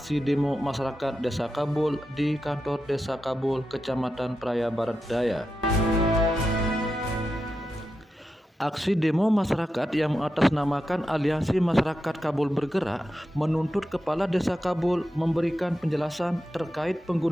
demo masyarakat Desa Kabul di kantor Desa Kabul, Kecamatan Praia Barat Daya. Aksi demo masyarakat yang mengatasnamakan Aliansi Masyarakat Kabul Bergerak menuntut Kepala Desa Kabul memberikan penjelasan terkait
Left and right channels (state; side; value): normal; both; correlation 0.89